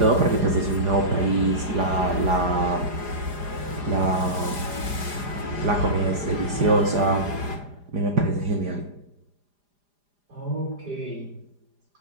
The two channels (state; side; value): late; left; 4.9 ms